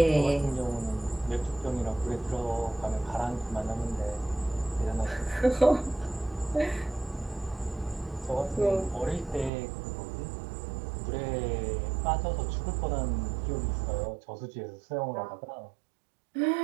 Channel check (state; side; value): drops out; left; at 9.5 s